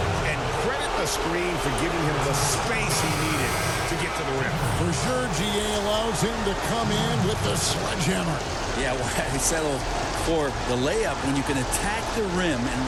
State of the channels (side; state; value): both; identical; correlation 1.00